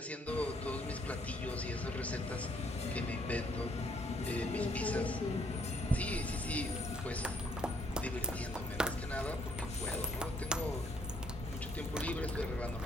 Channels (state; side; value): normal; both; correlation 0.68